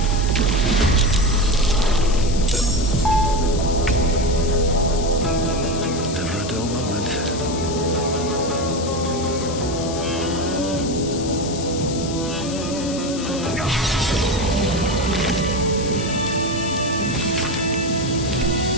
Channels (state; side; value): noise; left; hiss, 10 dB below the sound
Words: Never a dull moment.